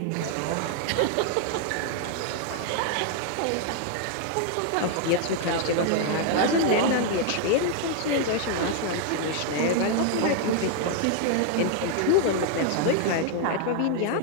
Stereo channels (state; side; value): different; both; correlation 0.00